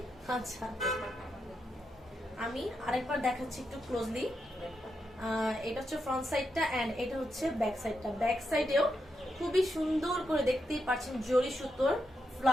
আচ্ছা আমি আরেকবার দেখাচ্ছি একটু ক্লোজলি। এটা হচ্ছে ফ্রন্ট সাইডটা এন্ড এটা হচ্ছে ব্যাক সাইডটা। ব্যাক সাইডেও খুবই সুন্দর করে দেখতেই পাচ্ছেন জরি সুতোর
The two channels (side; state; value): both; normal; correlation 0.84